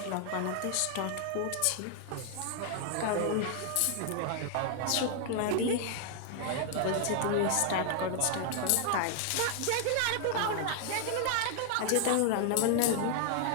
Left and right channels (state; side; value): different; both; correlation 0.00